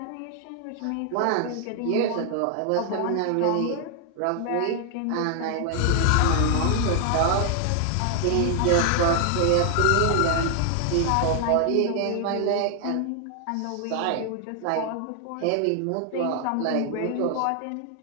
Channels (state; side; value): different; both; correlation 0.00